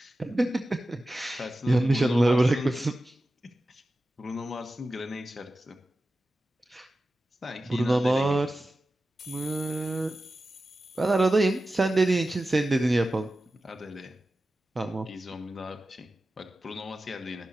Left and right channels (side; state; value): both; normal; correlation 0.94